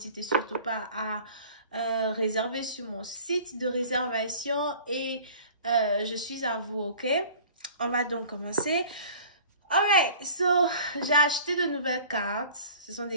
surtout pas à réserver sur mon site de réservation et je suis à vous, ok? On va donc commencer. Alright, so j'ai acheté de nouvelles cartes. Ce sont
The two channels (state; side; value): inverted; both; correlation -0.46